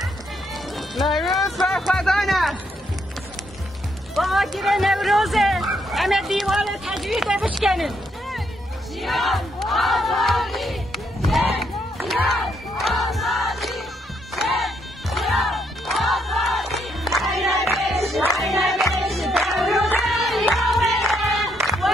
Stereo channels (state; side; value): normal; both; correlation 0.75